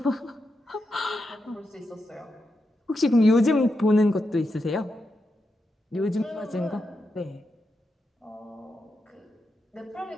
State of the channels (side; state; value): both; normal; correlation 0.86